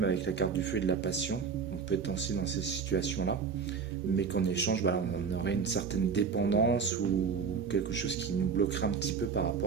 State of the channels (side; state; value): left; quieter; 5.8 dB